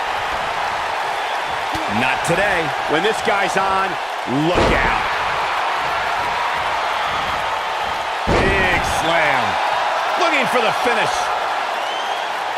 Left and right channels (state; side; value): identical; both; correlation 1.00